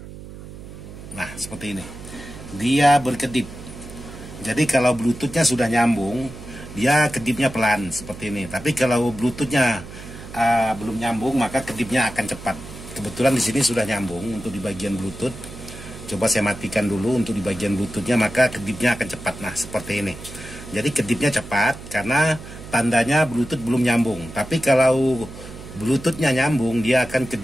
Nah, seperti ini. Dia berkedip. Jadi kalau Bluetoothnya sudah nyambung, dia kedipnya pelan seperti ini. Tapi kalau Bluetoothnya belum nyambung, maka kedipnya akan cepat. Kebetulan di sini sudah nyambung untuk di bagian Bluetooth. Coba saya matikan dulu untuk di bagian Bluetoothnya, maka kedipnya akan cepat. Nah, seperti ini. Jadi kedipnya cepat karena tandanya Bluetooth belum nyambung. Tapi kalau Bluetoothnya nyambung, dia akan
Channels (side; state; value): right; noise; hum, 14 dB below the sound